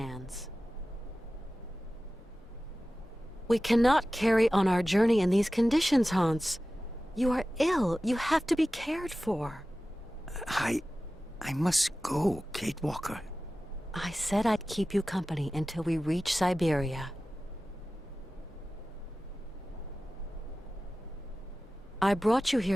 We cannot carry on our journey in these conditions, Hans. You are ill. You have to be cared for. I must go, Kate Walker. I said I'd keep you company until we reach Syberia. I brought you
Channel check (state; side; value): normal; both; correlation 0.96